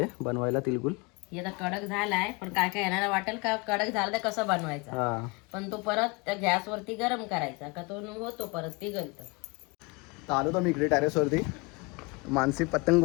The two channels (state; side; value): quieter; right; 27.4 dB